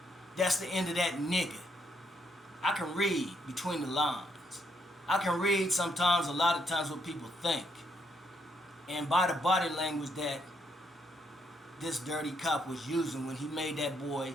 that's the end of that nigga. I can read between the lines. I can read sometimes, a lot of times, what people think. And by the body language that this dirty cop was using when he made that boy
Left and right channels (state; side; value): normal; both; correlation 0.74